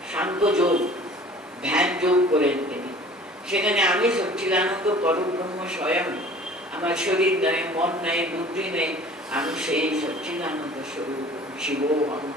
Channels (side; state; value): both; normal; correlation 0.47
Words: সাংখ্য যোগ, ধ্যান যোগ করেন তিনি। সেখানে আমি সচ্চিদানন্দ পরব্রহ্ম স্বয়ং, আমার শরীর নেই, মন নেই, বুদ্ধি নেই, আমি সেই সচ্চিদানন্দ স্বরূপ। শিবোহম